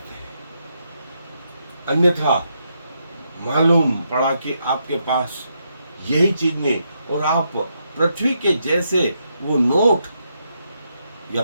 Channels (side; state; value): both; inverted; correlation -0.80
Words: हैं, अन्यथा मालूम पड़ा कि आपके पास यही चीज नहीं, और आप पृथ्वी के जैसे वो नोट या